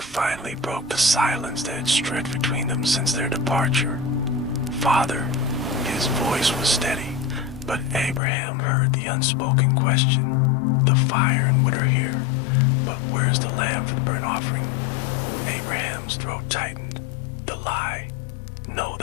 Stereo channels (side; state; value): right; drops out; at 8.2 s